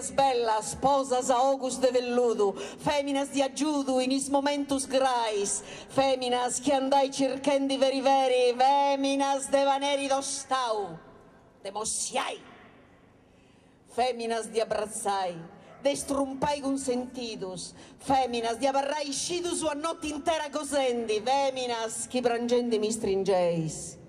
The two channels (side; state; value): both; identical; correlation 1.00